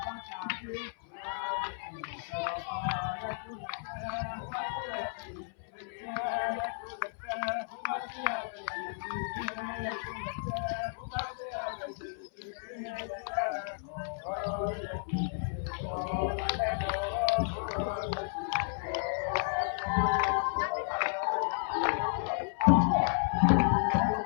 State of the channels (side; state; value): right; silent; 56 dB below the other